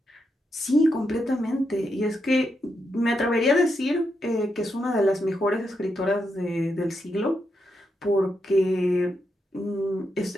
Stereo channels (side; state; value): both; normal; correlation 0.83